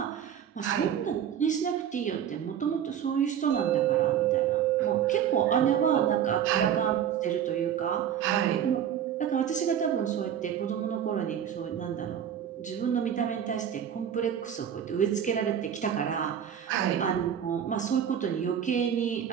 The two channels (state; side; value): quieter; left; 9.2 dB